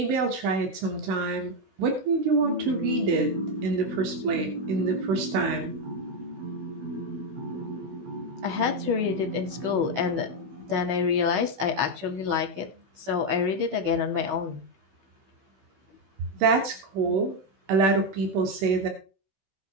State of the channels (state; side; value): late; left; 16 ms